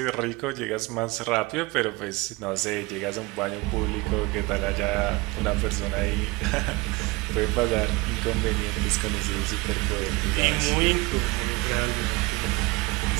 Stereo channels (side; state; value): left; quieter; 22.9 dB